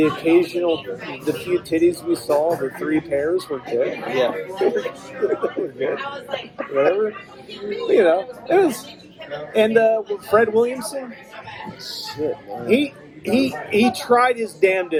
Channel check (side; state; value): both; identical; correlation 1.00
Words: few titties we saw, the 3 pairs were good. Yeah. Were good. Whatever. It was. And Fred Williamson, shit, man. He tried his